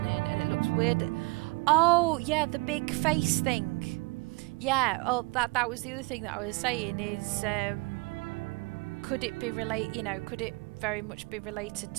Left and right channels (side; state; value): left; quieter; 27.4 dB